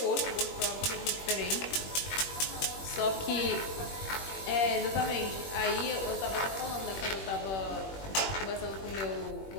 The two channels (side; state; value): right; late; 21 ms